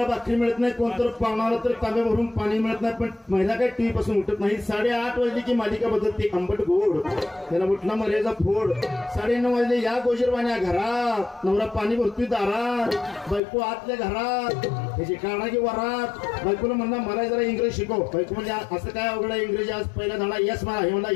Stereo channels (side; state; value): right; drops out; at 13.4 s